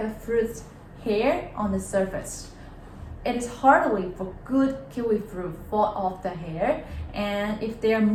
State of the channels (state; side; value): identical; both; correlation 1.00